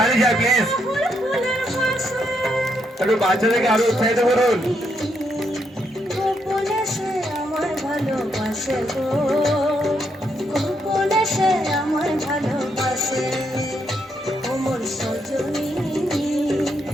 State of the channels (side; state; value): both; normal; correlation 0.77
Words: যায় প্লিজ একটু বাচ্চাদেরকে আরো উৎসাহিত করুন গোপনে সে আমায় ভালোবাসে গো গোপনে সে আমায় ভালোবাসে ওমর সজনী